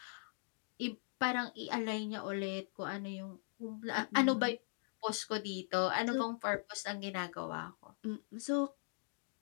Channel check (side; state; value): right; silent; digital silence